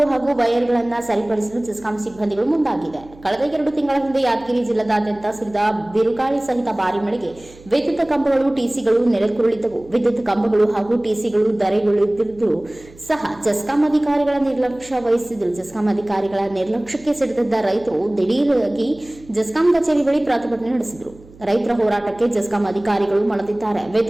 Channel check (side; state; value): right; noise; hum, 23 dB below the sound